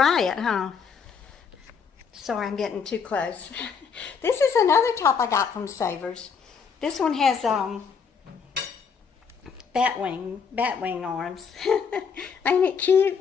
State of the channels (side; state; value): right; quieter; 6.2 dB